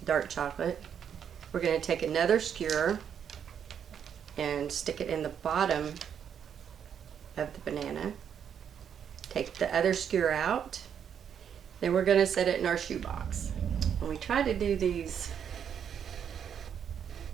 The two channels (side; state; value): left; quieter; 8.2 dB